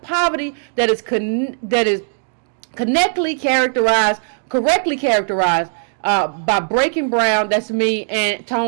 that is correctly characterized by Breaking Brown, that's me, and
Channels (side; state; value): left; silent; digital silence